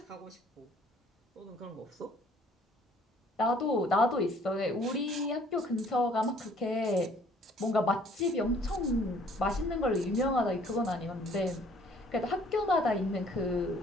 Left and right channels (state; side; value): normal; both; correlation 0.58